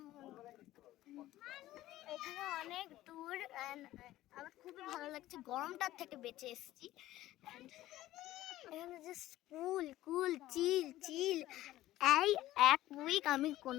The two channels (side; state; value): right; quieter; 15.3 dB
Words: এখানে অনেক দূর অ্যান্ড আমার খুবই ভালো লাগছে, গরমটার থেকে বেঁচে এসেছি। এখানে জাস্ট কুল কুল চিল চিল। এই এক উইক আমি